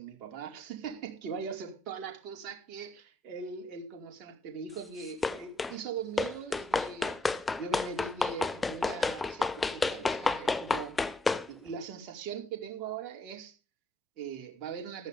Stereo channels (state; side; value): normal; both; correlation 0.72